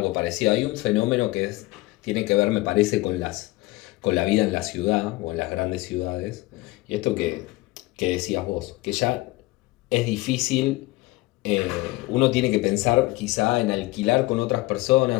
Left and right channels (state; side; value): quieter; right; 20.7 dB